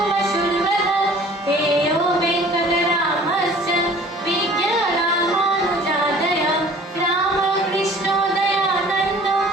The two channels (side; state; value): both; normal; correlation 0.49